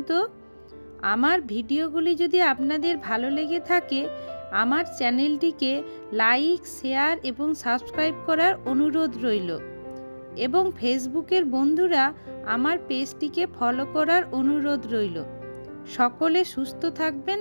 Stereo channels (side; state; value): both; inverted; correlation -1.00